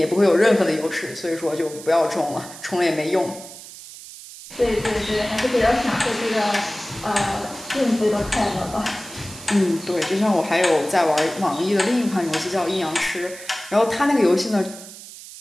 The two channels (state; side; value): noise; right; hiss, 15 dB below the sound